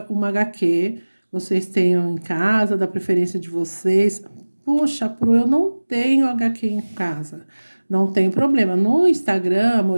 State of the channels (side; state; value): both; inverted; correlation -1.00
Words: uma HQ, vocês tenham em casa, da preferência de vocês. Poxa, eu não tenho HQ em casa. Não tem problema. No Instagram,